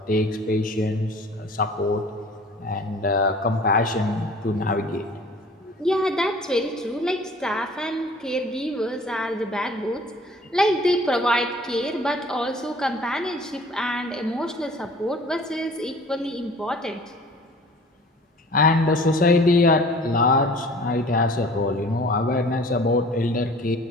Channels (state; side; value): normal; both; correlation 0.48